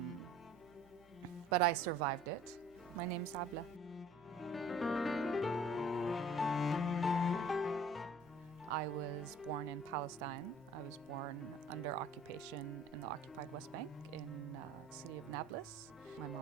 but I survived it. My name's Abla. I was born in Palestine. I was born under occupation in the occupied West Bank in the city of Nablus. My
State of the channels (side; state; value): right; noise; hum, 28 dB below the sound